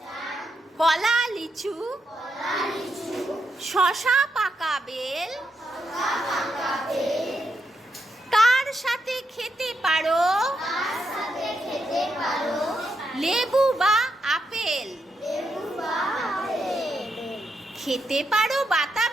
কলা, লিচু, শশা, পাকা বেল, তার সাথে খেতে পারো লেবু বা আপেল, খেতে পারো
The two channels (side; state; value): both; normal; correlation 0.82